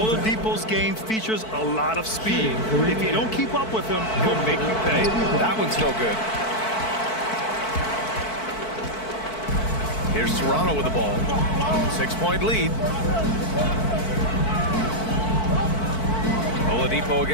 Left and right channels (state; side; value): late; right; 4.5 ms